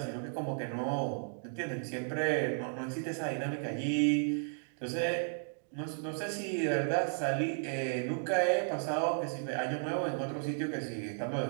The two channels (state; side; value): silent; left; digital silence